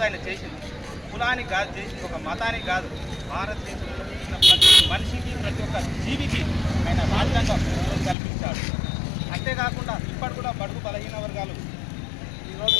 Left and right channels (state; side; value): drops out; right; at 8.2 s